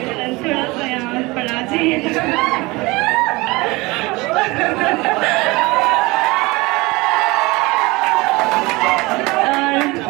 सा यहाँ पढ़ा चाहिए।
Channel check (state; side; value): quieter; left; 23.1 dB